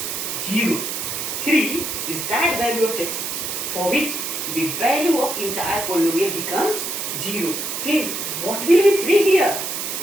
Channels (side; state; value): right; noise; hiss, 4 dB below the sound